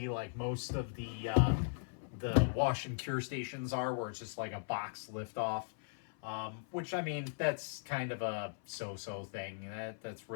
like most of the wash and cure stations are, where it's just like a box lift off. Which, I mean, that's kind of a so-so thing. That's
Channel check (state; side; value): silent; right; 52 dB below the other